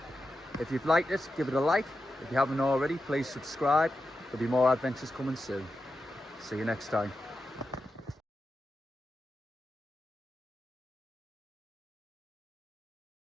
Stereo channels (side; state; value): both; normal; correlation 0.89